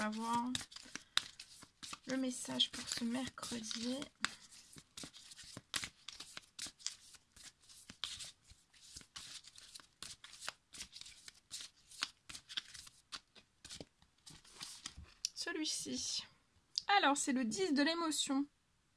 voir le message pour ce mercredi. Celui-ci. Alors, c'est le 10 de l'émotion.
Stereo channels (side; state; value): both; identical; correlation 1.00